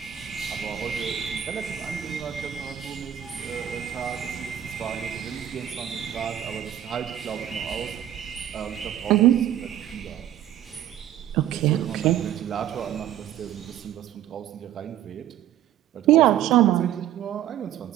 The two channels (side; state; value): left; quieter; 11.3 dB